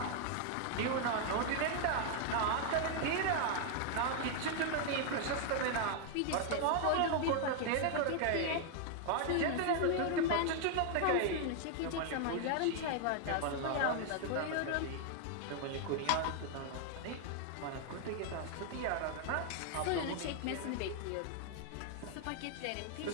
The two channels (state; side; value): different; both; correlation 0.00